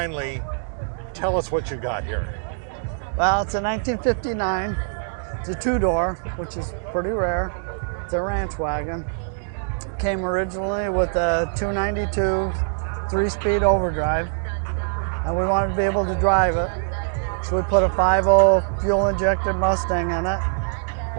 tell us what you got here. Well, it's a 1959. It's a two-door, which is pretty rare. It's a Ranch Wagon. Came originally with a 292 3-speed overdrive, and we wanted to be able to drive it. So we put a 5.0 fuel-injected Mustang in it.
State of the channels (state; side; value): silent; left; digital silence